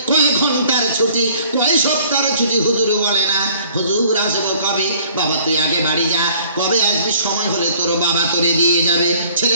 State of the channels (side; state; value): both; inverted; correlation -0.57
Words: কয় ঘন্টার ছুটি, কয় সপ্তাহের ছুটি হুজুর বলে না। হুজুর আসবো কবে? বাবা তুই আগে বাড়ি যা, কবে আসবি? সময় হলে তোর বাবা তোরে দিয়ে যাবে।